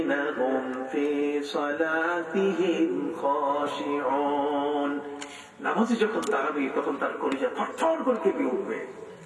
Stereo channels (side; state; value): both; identical; correlation 1.00